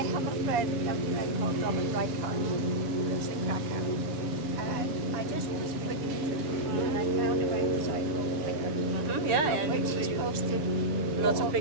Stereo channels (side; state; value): left; late; 6.4 ms